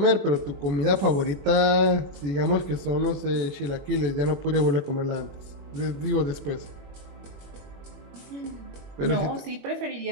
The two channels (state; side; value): late; left; 21 ms